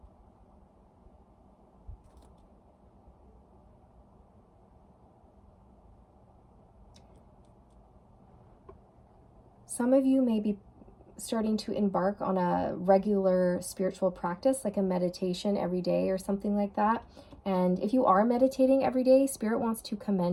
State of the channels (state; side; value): identical; both; correlation 1.00